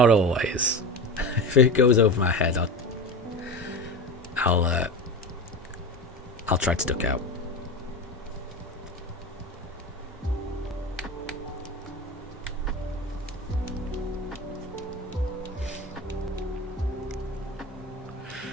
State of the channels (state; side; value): normal; both; correlation 0.26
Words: always. If it goes over my head, I'll try to duck out.